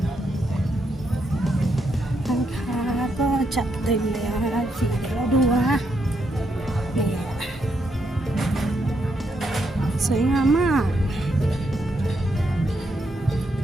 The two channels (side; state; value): both; normal; correlation 0.79